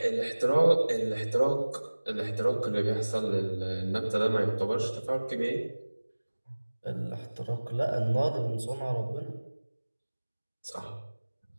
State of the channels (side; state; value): both; inverted; correlation -1.00